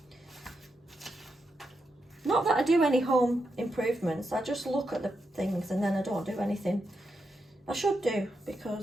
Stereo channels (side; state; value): both; normal; correlation 0.85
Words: Not that I do any home improvements. I just look at the things and then I don't do anything. I should do,